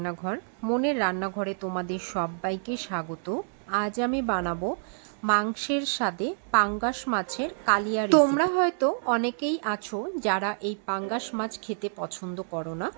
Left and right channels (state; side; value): silent; left; 59 dB below the other